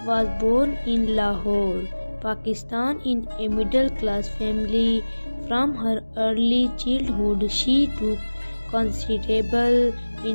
was born in Lahore, Pakistan in a middle-class family. From her early childhood, she took considerable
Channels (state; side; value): inverted; both; correlation -1.00